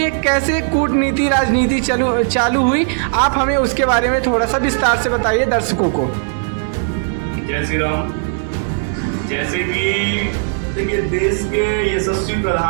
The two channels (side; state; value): left; silent; digital silence